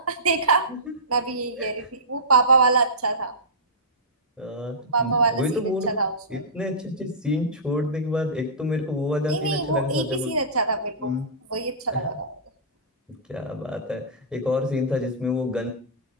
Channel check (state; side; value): normal; both; correlation -0.17